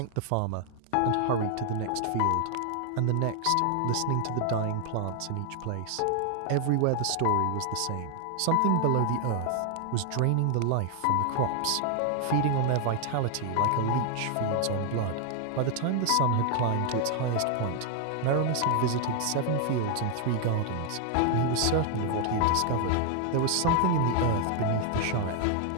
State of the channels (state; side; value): different; both; correlation 0.00